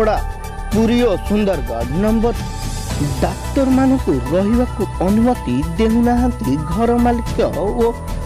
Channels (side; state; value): both; identical; correlation 1.00